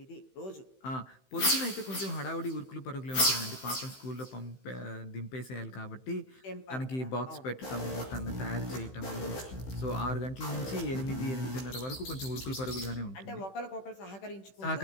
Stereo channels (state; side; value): late; right; 15 ms